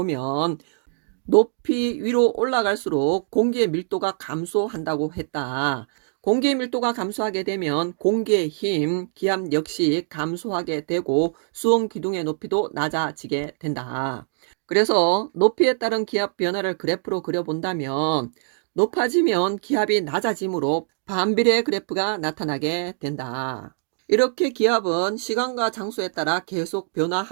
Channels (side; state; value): left; silent; digital silence